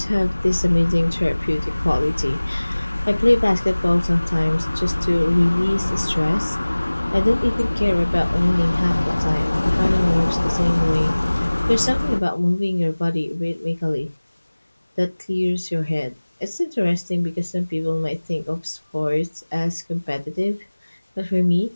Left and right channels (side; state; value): both; inverted; correlation -1.00